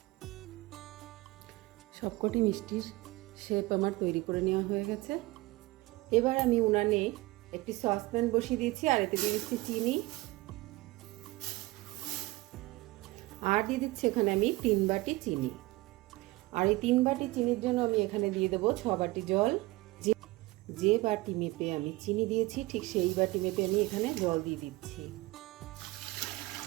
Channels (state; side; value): quieter; left; 20.8 dB